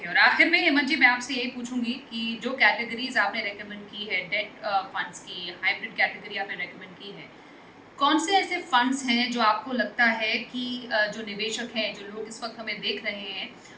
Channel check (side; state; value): both; identical; correlation 1.00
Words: और आखिर में हेमंत जी मैं आपसे यही पूछूँगी कि जो कैटेगरीज़ आपने रिकमेंड की है डेट फंड्स की, हाइब्रिड कैटेगरी आपने रिकमेंड की है, कौन से ऐसे फंड्स हैं जो आपको लगता है कि जो निवेशक हैं, जो लोग इस वक़्त हमें देख रहे हैं